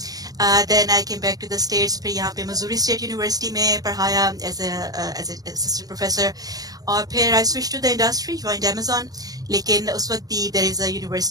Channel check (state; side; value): late; left; 0.18 ms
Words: Then I came back to the States. फिर यहाँ पे मिज़ूरी स्टेट यूनिवर्सिटी में पढ़ाया as an assistant professor. और फिर I switched to the industry, joined Amazon. लेकिन उस वक्त भी there is a